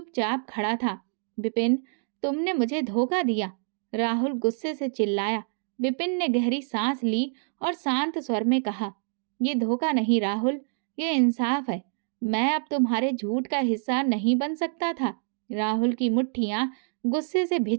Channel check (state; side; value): silent; left; digital silence